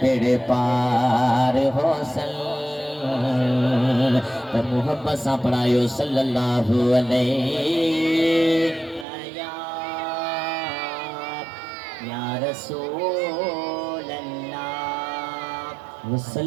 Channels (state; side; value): drops out; left; at 9.1 s